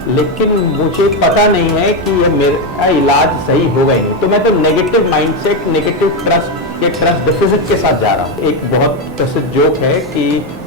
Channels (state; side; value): normal; both; correlation 0.08